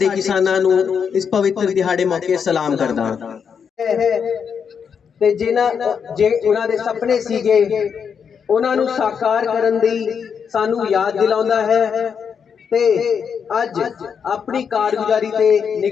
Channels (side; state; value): right; quieter; 6.8 dB